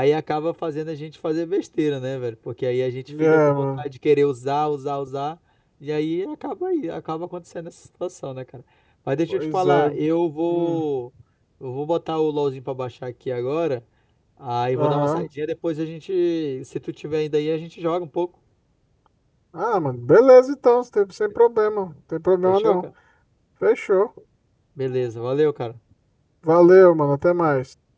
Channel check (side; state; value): both; identical; correlation 1.00